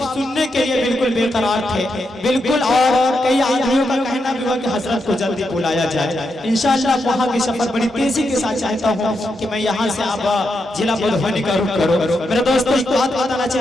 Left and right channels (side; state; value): both; normal; correlation 0.83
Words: सुनने के लिए बिल्कुल बेकरार थे, बिल्कुल, और कई आदमियों का कहना भी हुआ कि हजरत को जल्दी बुलाया जाए। इंशाअल्लाह वहाँ की सफर बड़ी तेजी के साथ चाहता हूँ कि मैं यहाँ से आप जिला मधुबनी का रुख करो। मेरे दोस्तों एक बात बताना